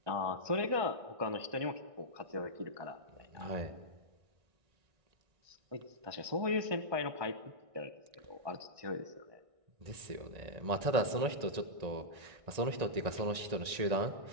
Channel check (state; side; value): late; left; 1.6 ms